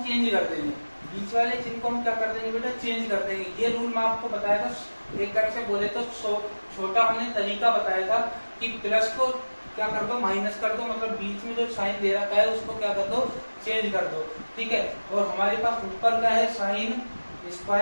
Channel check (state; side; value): inverted; both; correlation -1.00